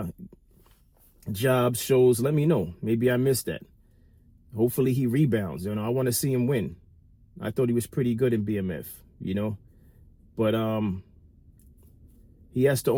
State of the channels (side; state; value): both; identical; correlation 1.00